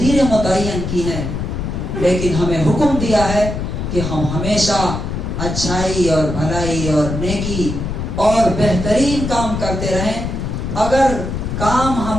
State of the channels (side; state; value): left; noise; rumble, 4 dB below the sound